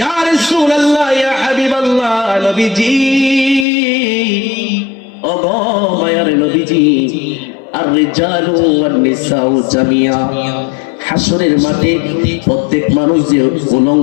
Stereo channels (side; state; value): right; drops out; at 3.7 s